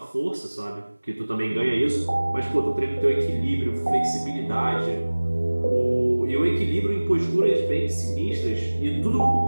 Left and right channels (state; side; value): inverted; both; correlation -1.00